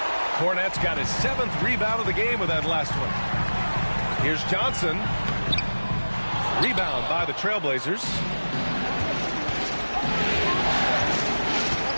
Cornette's got his 7th rebound of the game with that last one. Here's Johnson. Rebound by the Trailblazers.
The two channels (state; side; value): inverted; both; correlation -1.00